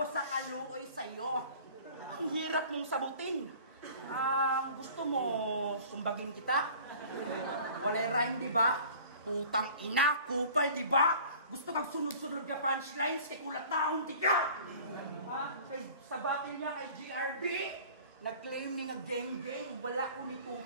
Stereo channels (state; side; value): inverted; both; correlation -0.46